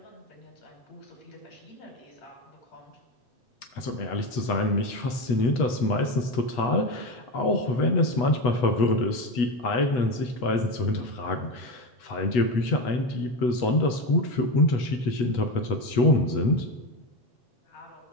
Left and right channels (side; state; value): right; late; 8.2 ms